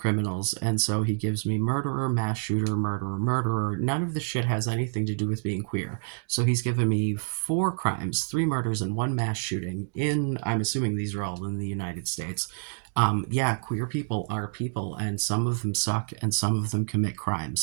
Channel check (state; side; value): silent; left; digital silence